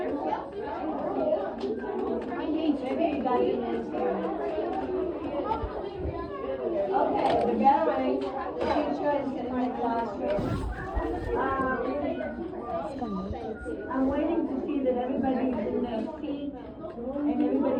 Okay, the gathering, the teacher is in my classroom. I'm waiting to see that everybody's in their seat and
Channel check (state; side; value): identical; both; correlation 1.00